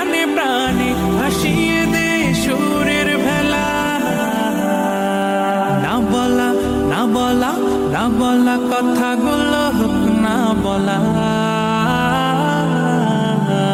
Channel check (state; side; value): identical; both; correlation 1.00